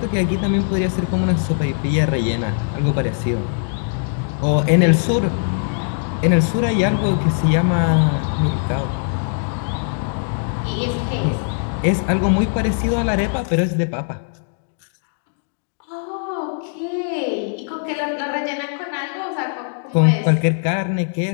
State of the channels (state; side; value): silent; right; digital silence